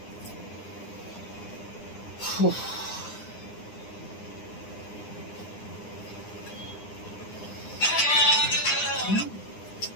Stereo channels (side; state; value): right; late; 9.7 ms